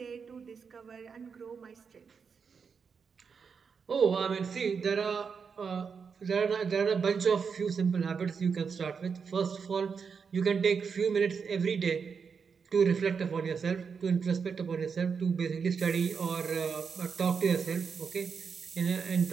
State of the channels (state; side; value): quieter; left; 5.9 dB